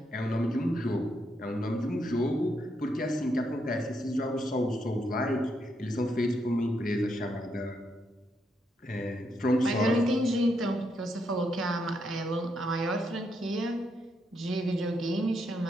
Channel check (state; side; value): normal; both; correlation 0.79